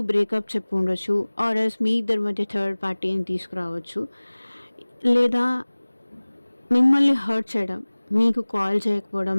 బ్రేకప్ చెప్పి ఉండొచ్చు, ఆర్ ఎల్స్ మీ ఇద్దరి మధ్య థర్డ్ పార్టీని తీసుకురావచ్చు. లేదా మిమ్మల్ని హర్ట్ చేయడం, మీకు కాల్ చేయకపోవడం,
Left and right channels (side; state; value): both; inverted; correlation -1.00